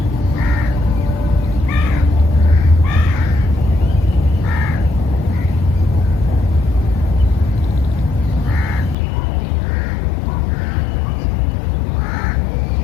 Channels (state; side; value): drops out; right; at 9.0 s